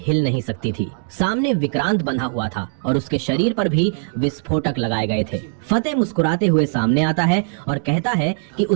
हिल नहीं सकती थी। सामने विक्रांत बंधा हुआ था और उसके शरीर पर भी विस्फोटक लगाए गए थे। फतेह मुस्कुराते हुए सामने आता है और कहता है कि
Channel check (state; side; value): silent; left; digital silence